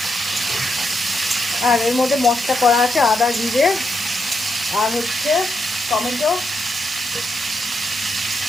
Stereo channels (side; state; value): both; normal; correlation 0.82